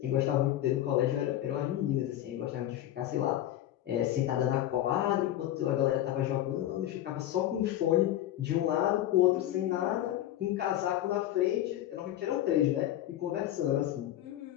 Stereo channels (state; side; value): quieter; right; 13.0 dB